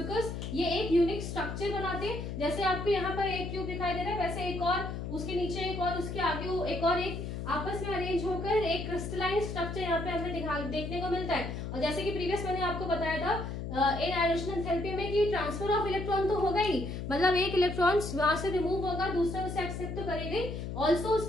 ये एक यूनिक स्ट्रक्चर बनाते हैं, जैसे आपको यहाँ पर एक क्यूब दिखाई दे रहा है, वैसे एक और उसके नीचे एक और उसके आगे एक और एक आपस में अरेंज होकर एक क्रिस्टलाइन स्ट्रक्चर यहाँ पे हमें देखने को मिलता है। और जैसे कि प्रीवियस मैंने आपको बताया था इन आयोनाइजेशन एंथैल्पी में कि ट्रांसफर ऑफ इलेक्ट्रॉन तो होगा ही, मतलब एक इलेक्ट्रॉन वहां से रिमूव होगा, दूसरा उसे एक्सेप्ट तो करेगा ही, ऑल्सो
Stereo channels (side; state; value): left; noise; hum, 5 dB below the sound